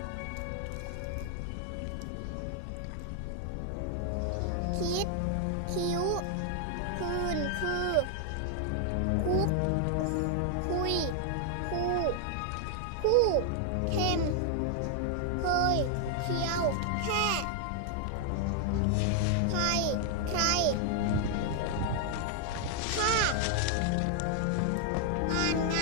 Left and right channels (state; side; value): different; both; correlation 0.00